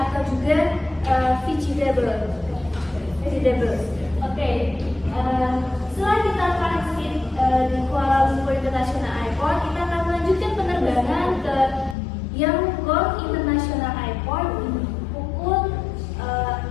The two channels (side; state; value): right; drops out; at 12.0 s